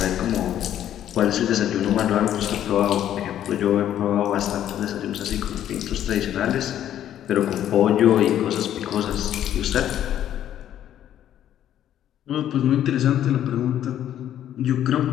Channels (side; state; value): right; quieter; 11.1 dB